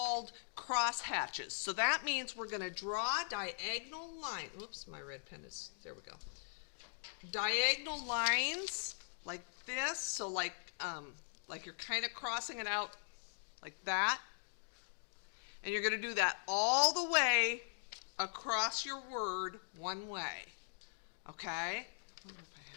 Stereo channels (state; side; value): silent; right; digital silence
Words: cross hatches. So that means we're going to draw diagonal lines. Whoops, my red pen is, there we go. Diagonal lines like this, so like you're kind of crossing it out like that. And you're going to do that all the way across your word one way. Okay?